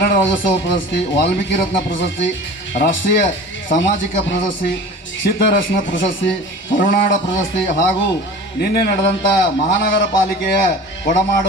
ರಾಜ್ಯೋತ್ಸವ ಪ್ರಶಸ್ತಿ, ವಾಲ್ಮೀಕಿ ರತ್ನ ಪ್ರಶಸ್ತಿ, ರಾಷ್ಟ್ರೀಯ ಸಾಮಾಜಿಕ ಪ್ರಶಸ್ತಿ, ಸಿದ್ಧರತ್ನ ಪ್ರಶಸ್ತಿ, ಕರುನಾಡ ಪ್ರಶಸ್ತಿ ಹಾಗೂ ನಿನ್ನೆ ನಡೆದಂಥ ಮಹಾನಗರ ಪಾಲಿಕೆಯ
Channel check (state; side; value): normal; both; correlation 0.39